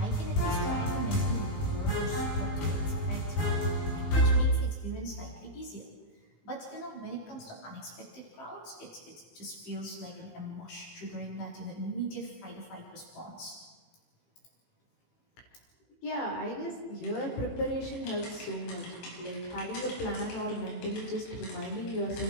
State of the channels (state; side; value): late; right; 18 ms